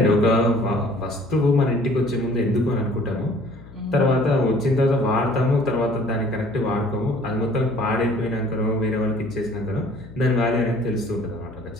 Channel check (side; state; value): left; noise; hum, 19 dB below the sound